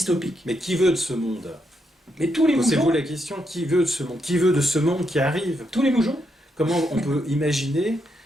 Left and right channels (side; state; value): both; normal; correlation 0.80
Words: Mais qui veut de ce monde? Mais tous les moujons. Posez-vous la question, qui veut de ce monde? Qui veut de ce monde qui arrive? Tous les moujons. Comment on peut imaginer,